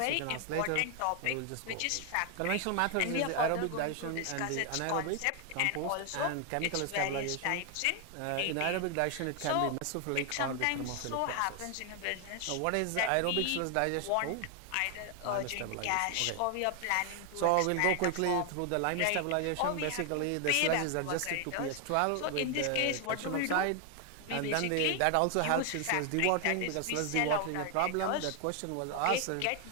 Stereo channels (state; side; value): different; both; correlation 0.00